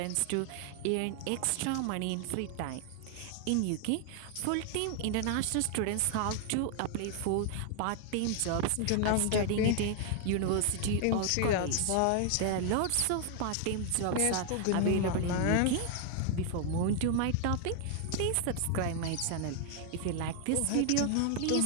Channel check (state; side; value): different; both; correlation 0.00